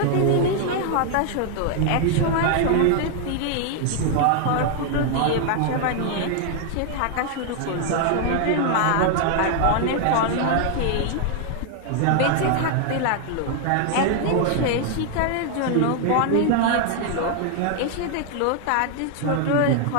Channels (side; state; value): both; different; correlation 0.00